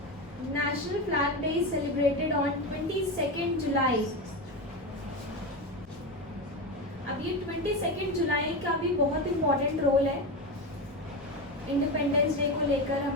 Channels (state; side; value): noise; left; rumble, 24 dB below the sound